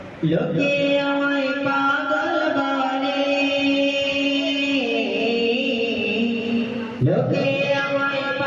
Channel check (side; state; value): both; identical; correlation 1.00